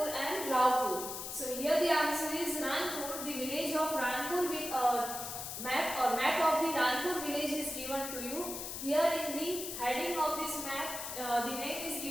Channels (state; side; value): noise; left; hiss, 6 dB below the sound